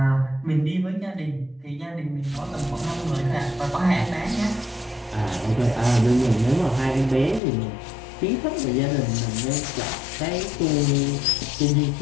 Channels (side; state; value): right; drops out; at 7.4 s